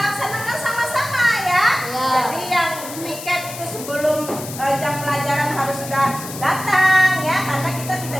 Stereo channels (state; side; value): noise; left; hiss, 11 dB below the sound